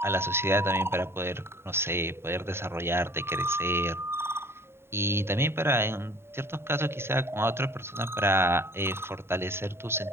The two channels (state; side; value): late; left; 0.12 ms